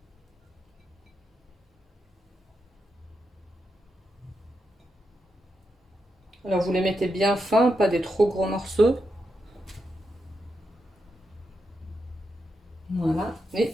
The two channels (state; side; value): normal; both; correlation 0.85